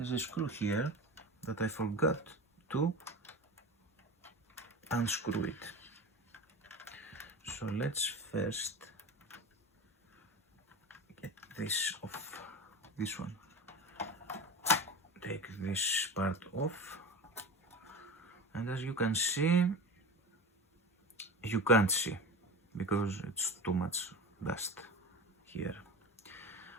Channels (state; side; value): normal; both; correlation 0.30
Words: a screw here that I forgot to unscrew it. So let's first get this off, this one. Take this part off, and as you can see, you can't see because it's too much dust here.